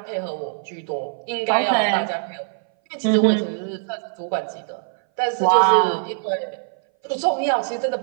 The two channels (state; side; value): silent; left; 60 dB below the other